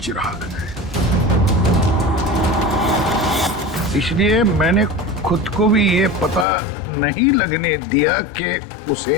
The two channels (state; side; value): drops out; right; at 6.5 s